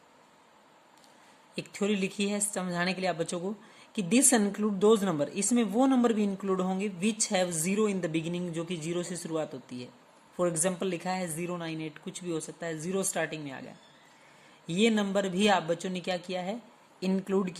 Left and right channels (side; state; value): both; identical; correlation 1.00